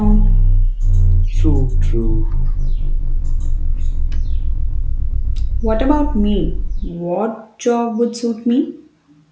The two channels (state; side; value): identical; both; correlation 1.00